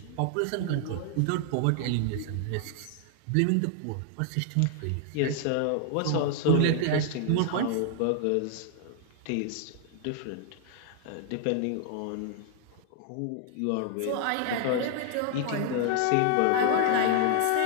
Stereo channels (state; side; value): different; both; correlation 0.00